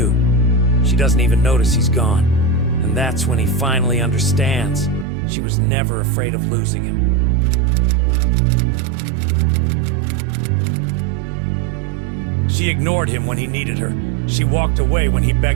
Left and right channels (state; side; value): drops out; left; at 5.1 s